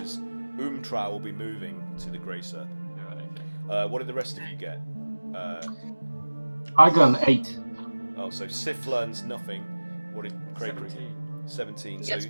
Umtra will be moving to the Grey Serpent. Right, okay. What did the rest of you get? I got an 8. Oh, so Sif learns nothing. What did Craig read? 17. He So gets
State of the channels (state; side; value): inverted; both; correlation -1.00